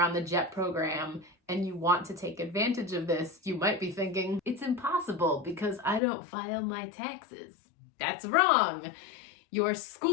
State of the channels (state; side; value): drops out; right; at 6.0 s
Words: on the JET program and you want to take advantage of this, you might be thinking, it's impossible because I don't file my taxes. That's wrong. Your